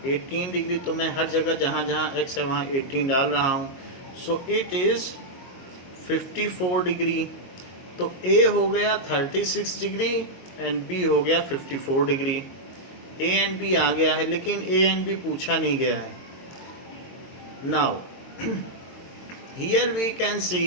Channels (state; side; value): late; right; 22 ms